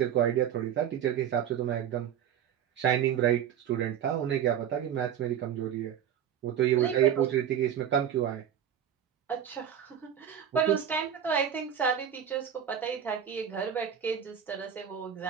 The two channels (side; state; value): left; quieter; 9.1 dB